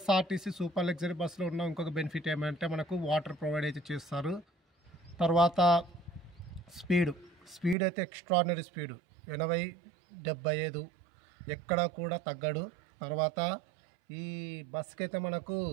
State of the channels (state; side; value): drops out; left; at 7.8 s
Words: సూపర్ లగ్జరీ బస్సులో ఉన్న ఇంకొక బెనిఫిట్ ఏమంటే మనకు వాటర్ ప్రొవైడ్ అయితే చేస్తారు. తర్వాత స్పీడ్ అయితే ఎక్స్ట్రాడినరీ స్పీడు 80-75 ఎక్కడ కూడా తగ్గడు. తర్వాత ఈ బస్కి అయితే మనకు